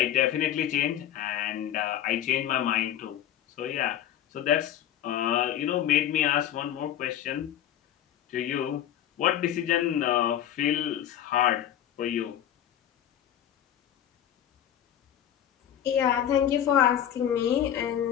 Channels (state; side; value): quieter; right; 10.9 dB